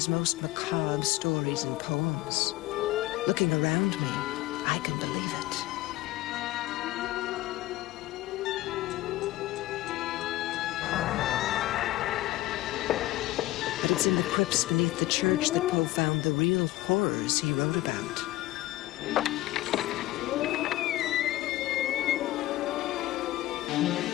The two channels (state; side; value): quieter; right; 17.0 dB